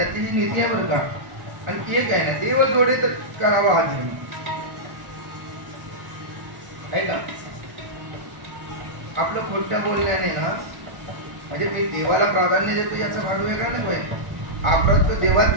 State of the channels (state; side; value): late; left; 1.4 ms